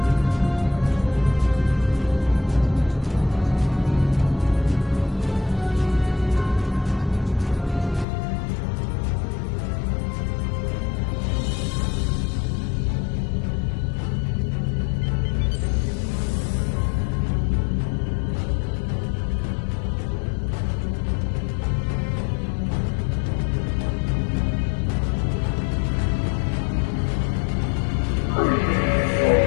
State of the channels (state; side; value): drops out; right; at 8.1 s